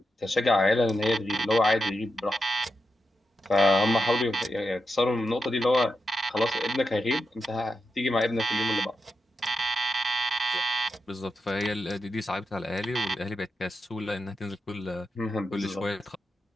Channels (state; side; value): normal; both; correlation 0.88